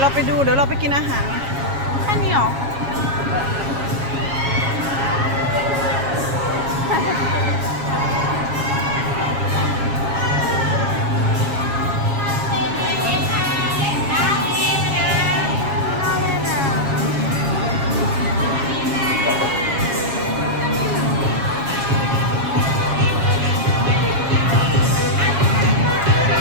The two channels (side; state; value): left; late; 7.3 ms